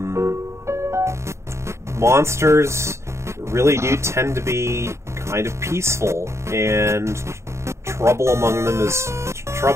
monsters really do tend to be kind of peaceful, and trouble among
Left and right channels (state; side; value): late; left; 0.14 ms